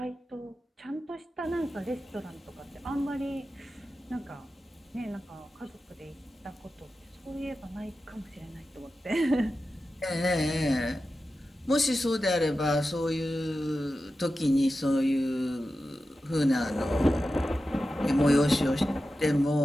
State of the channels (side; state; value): both; normal; correlation 0.93